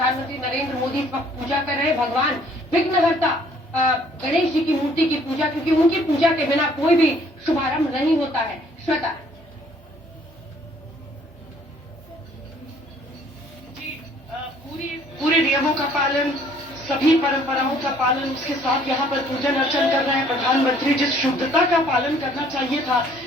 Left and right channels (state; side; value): normal; both; correlation 0.60